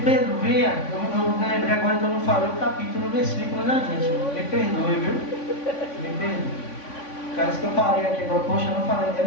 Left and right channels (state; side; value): late; right; 3.5 ms